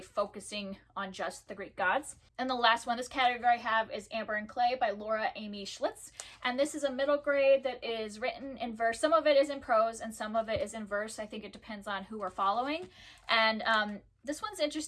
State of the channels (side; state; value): both; identical; correlation 1.00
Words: focusing on just the Greek gods. And the last one this category I have is Amber and Clay by Laura Amy Schlitz. And this is a middle grade that is written in verse. Some of it is in prose and some of it is in verse. I think it depends on who we're following. And this one's